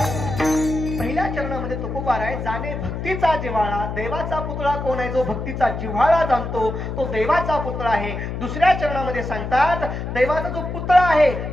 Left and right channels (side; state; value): left; noise; hum, 5 dB below the sound